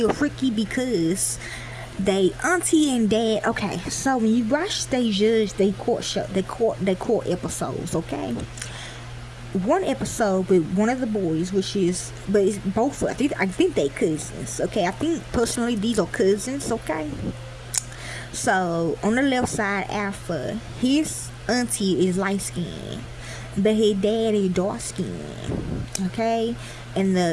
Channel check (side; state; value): both; identical; correlation 1.00